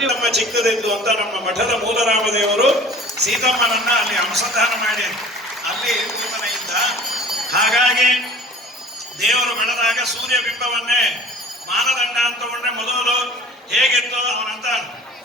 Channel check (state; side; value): normal; both; correlation 0.45